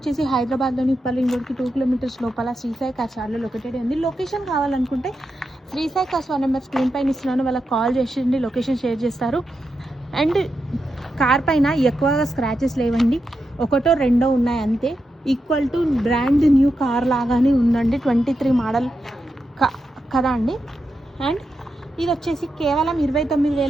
హైదరాబాద్లోని ఉప్పల్ రోడ్కి 2 కిలోమీటర్స్ లోపల శ్రీ సాయి కార్స్ యార్డ్లో లొకేటెడ్ ఉంది. లొకేషన్ కావాలనుకుంటే Sri Sai cars 1 number screen పైన ఇస్తున్నాను, వాళ్ళకి కాల్ చేసి లొకేషన్ షేర్ చేస్తారు. అండ్ కార్ పైన ఎక్కువగా స్క్రాచెస్ లేవండి, ఒకటో రెండో ఉన్నాయి అంతే. Equal to brand new car లాగానే ఉందండి, 23 మోడల్ కదా అండి. అండ్ ఇది వచ్చేసి కేవలం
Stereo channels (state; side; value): normal; both; correlation 0.87